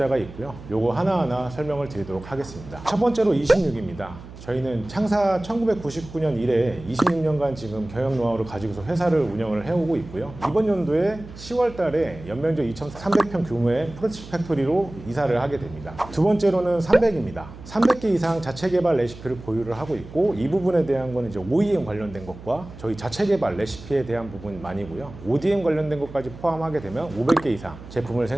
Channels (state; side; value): noise; right; hum, 16 dB below the sound